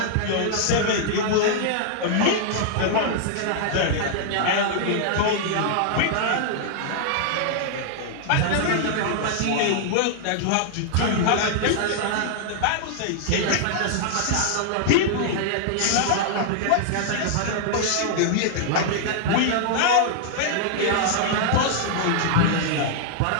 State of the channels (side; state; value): both; different; correlation -0.01